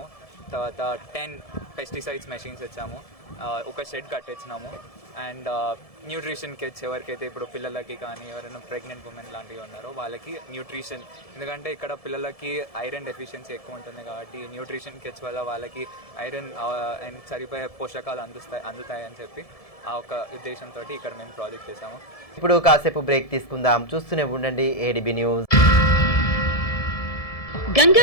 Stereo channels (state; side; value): late; right; 1.7 ms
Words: తర్వాత 10 పెస్టిసైడ్స్ మెషిన్స్ ఇచ్చాము. ఒక షెడ్ కట్టించినాము. అండ్ న్యూట్రిషన్ కిట్స్ ఎవరికైతే ఇప్పుడు పిల్లలకి కానీ ఎవరైనా ప్రెగ్నెంట్ ఉమెన్ లాంటివి ఉన్నారో వాళ్ళకి న్యూట్రిషన్, ఎందుకంటే ఇక్కడ పిల్లలకి ఐరన్ డెఫిషియన్సీ ఎక్కువ ఉంటుంది కాబట్టి న్యూట్రిషన్ కిట్స్ వల్ల వాళ్ళకి ఐరన్ అండ్ సరిపోయే పోషకాలు అందుతాయి అని చెప్పి ఆ ఒక ఉద్దేశంతో ఇక్కడ మేము ప్రాజెక్ట్ చేసాము. ఇప్పుడు కాసేపు బ్రేక్ తీసుకుందాం, చూస్తూనే ఉండండి ADB news.